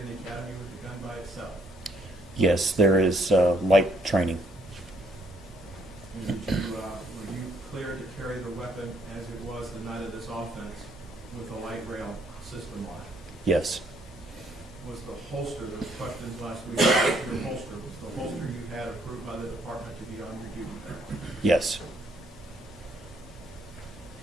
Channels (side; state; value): both; normal; correlation 0.68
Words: the academy with the gun by itself? Yes, there is light training. And did you, were you cleared to carry the weapon as it was the night of this offense with a light rail system on it? Yes. Was the holster, there was questions last week about your holster, was the holster you had approved by the department to be on your duty belt? Yes.